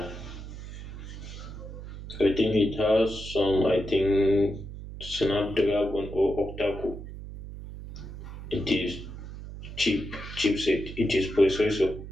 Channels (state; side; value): noise; right; hum, 11 dB below the sound